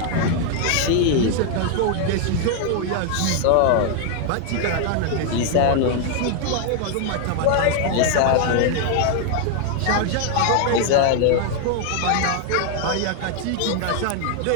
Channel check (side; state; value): both; different; correlation 0.00